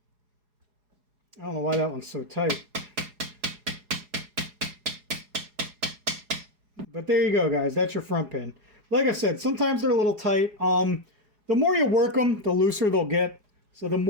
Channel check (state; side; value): late; left; 4.8 ms